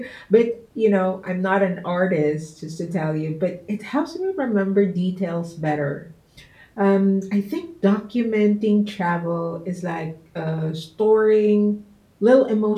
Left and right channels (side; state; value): both; identical; correlation 1.00